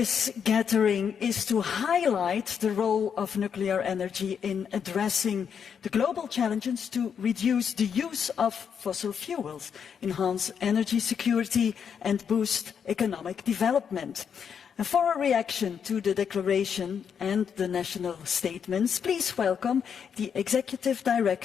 gathering is to highlight the role of nuclear energy in addressing the global challenges to reduce the use of fossil fuels, enhance energy security, and boost economic development. And for a reaction to the declaration and the national statements, please welcome the Executive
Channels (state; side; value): quieter; right; 7.3 dB